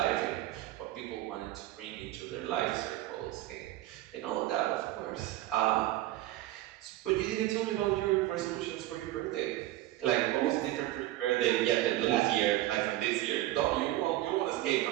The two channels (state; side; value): quieter; left; 15.6 dB